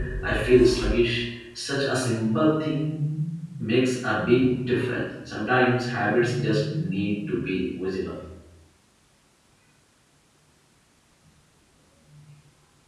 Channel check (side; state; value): both; identical; correlation 1.00